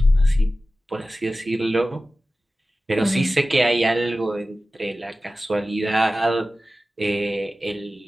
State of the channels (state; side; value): normal; both; correlation 0.95